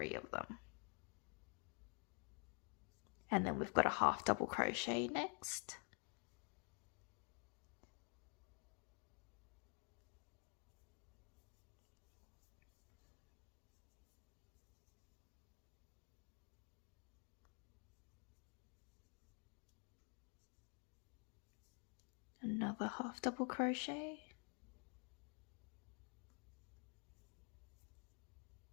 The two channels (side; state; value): right; quieter; 37.3 dB